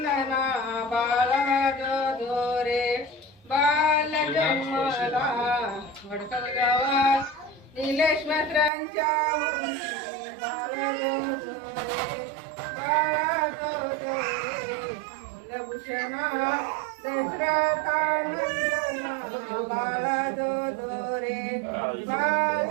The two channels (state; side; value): drops out; left; at 8.7 s